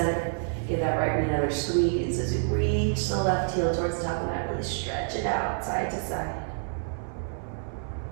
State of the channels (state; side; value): silent; left; 59 dB below the other